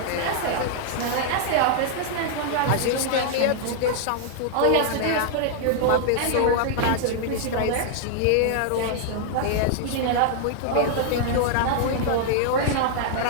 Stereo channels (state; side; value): different; both; correlation -0.01